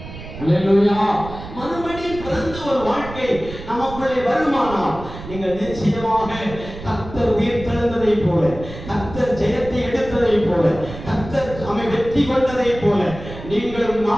அல்லேலூயா. மறுபடியும் பிறந்த ஒரு வாழ்க்கை நமக்குள்ளே வருமானால் நீங்கள் நிச்சயமாக கர்த்தர் உயிர்த்தெழுந்ததை போல, கர்த்தர் ஜெயத்தை எடுத்ததை போல, கர்த்தர் நம்மை வெற்றி கொண்டதை போல நீங்களும்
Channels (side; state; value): right; noise; rumble, 12 dB below the sound